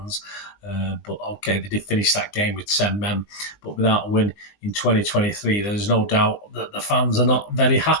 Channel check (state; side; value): late; right; 20 ms